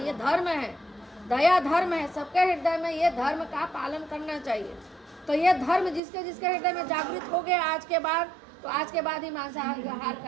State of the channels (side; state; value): left; drops out; at 6.0 s